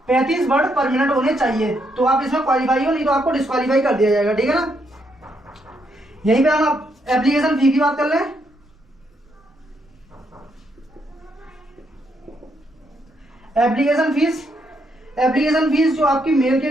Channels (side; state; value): both; normal; correlation 0.76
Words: 35 वर्ड पर मिनट होने चाहिए, तो आप इसमें क्वालिफाई हो, नहीं तो आपको डिस्क्वालीफाई कर दिया जाएगा, ठीक है ना। यहीं पे हम एप्लीकेशन फी की बात कर लें। एप्लीकेशन फीस जो आपकी मेल के